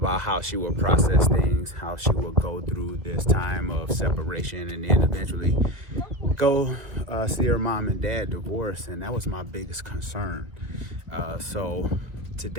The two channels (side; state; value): left; late; 2.0 ms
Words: how she would process things, how she would go through this time of separation, and then eventually go see her mom and dad divorced, and that was my biggest concern. So